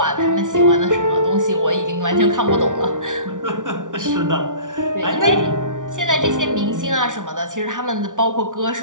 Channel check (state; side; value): late; left; 0.87 ms